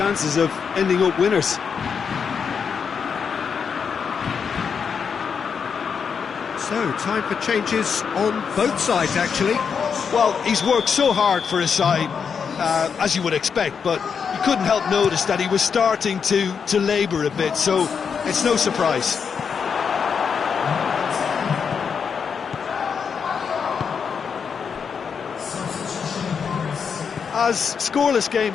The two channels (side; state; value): right; quieter; 6.4 dB